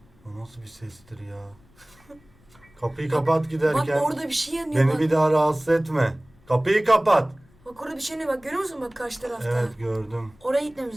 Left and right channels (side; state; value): left; noise; rumble, 29 dB below the sound